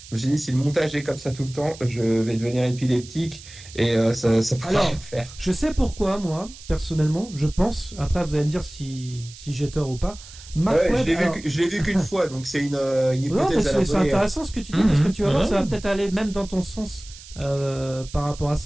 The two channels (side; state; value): right; noise; hiss, 18 dB below the sound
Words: Je me suis dit, si le montage est comme ça tout le temps, je vais devenir épileptique et ça pourra pas faire. Je sais pourquoi, moi, personnellement, je pense, après vous allez me dire si j'ai tort ou pas. Je l'ai vu qu'une fois, donc c'est une hypothèse à la c'est intéressant ce que tu dis, parce que tu vas voir, ça va peut-être aller même dans ton sens par rapport à